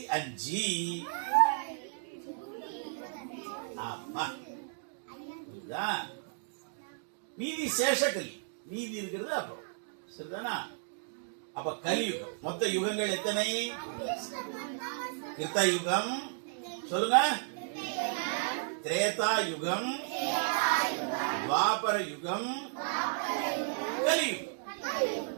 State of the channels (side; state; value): left; silent; digital silence